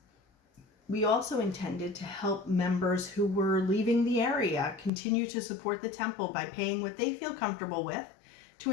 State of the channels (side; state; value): right; drops out; at 4.9 s